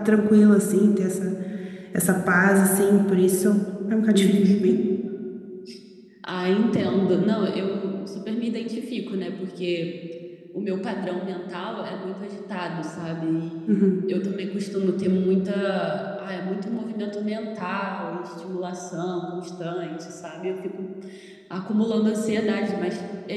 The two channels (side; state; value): both; identical; correlation 1.00